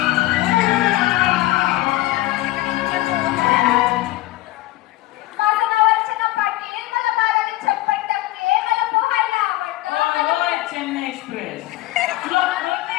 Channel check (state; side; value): quieter; right; 17.1 dB